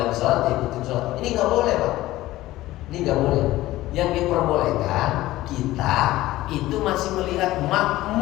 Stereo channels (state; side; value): quieter; right; 16.5 dB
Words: sholat, diikutin sholat. Ini nggak boleh Pak, ini nggak boleh. Yang diperbolehkan kita itu masih melihat